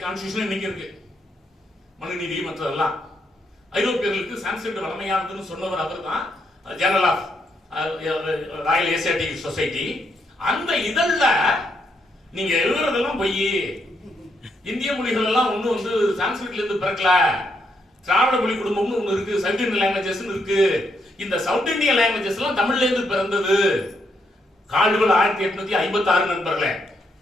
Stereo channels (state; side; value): normal; both; correlation 0.77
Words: கான்ஸ்டிடியூஷன் இன்னைக்கு இருக்கு. மனுநீதி மற்றதெல்லாம் ஐரோப்பியர்களுக்கு சான்ஸ்கிரிட் வளமையானதுன்னு சொன்னவர் அவர் தான். Journal of Royal Asiatic Society. அந்த இதழ்ல நீங்க எழுதுறதெல்லாம் பொய், இந்திய மொழிகள் எல்லாம் ஒண்ணு வந்து சான்ஸ்கிரிட்ல இருந்து பிறக்கல, திராவிட மொழி குடும்பம்னு ஒண்ணு இருக்கு, சவுத் இந்தியன் லாங்குவேஜஸ் இருக்கு, இந்த சவுத் இந்தியன் லாங்குவேஜஸ் எல்லாம் தமிழ்ல இருந்து பிறந்தது. கால்டுவெல் 1856 நண்பர்களே,